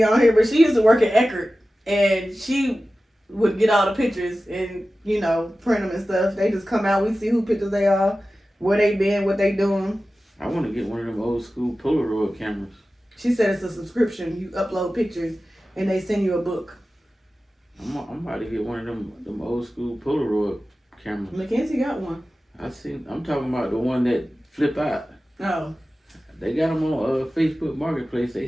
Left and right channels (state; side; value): normal; both; correlation 0.95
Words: on here, but she used to work at Eckerd, and she would get all the pictures and, print them and stuff. They just come out, we see who pictures they are, where they been, what they doing. I want to get one of them old school Polaroid cameras. She said it's a subscription. You upload pictures and they send you a book. I'm about to get one of them old school Polaroid cameras. Mackenzie got one. I'm talking about the one that flip out. Oh. They got them on Facebook Marketplace.